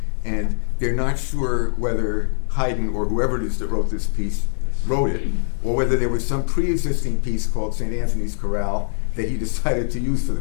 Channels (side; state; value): right; silent; digital silence